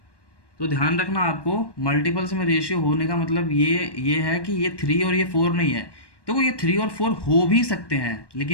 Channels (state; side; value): late; right; 1.1 ms